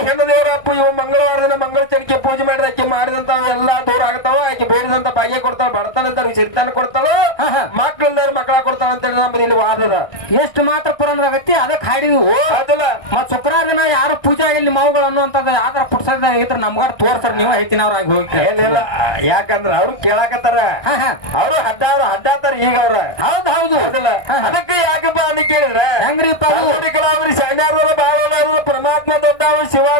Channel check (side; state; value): right; late; 1.6 ms